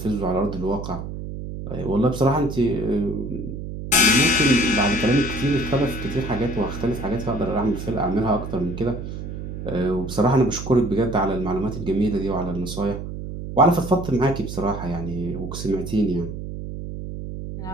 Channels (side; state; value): right; noise; hum, 8 dB below the sound